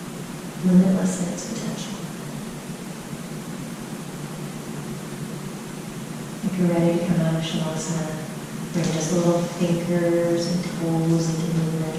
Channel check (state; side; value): identical; both; correlation 1.00